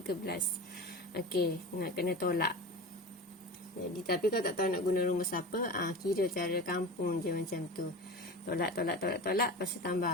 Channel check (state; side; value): normal; both; correlation 0.31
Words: Okey, nak kena tolak. Jadi tapi kalau tak tahu nak guna rumus apa, kira cara kampung je macam tu. Tolak, lepas tu